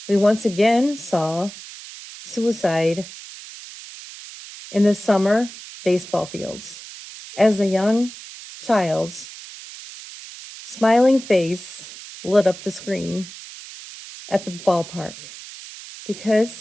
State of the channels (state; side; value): noise; right; hiss, 15 dB below the sound